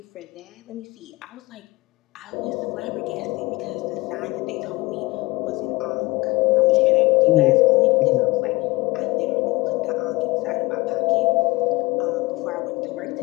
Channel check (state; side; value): quieter; right; 22.2 dB